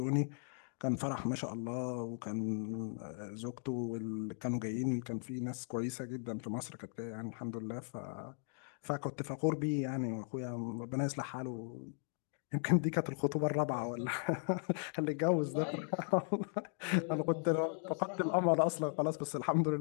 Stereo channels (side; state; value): right; silent; 53 dB below the other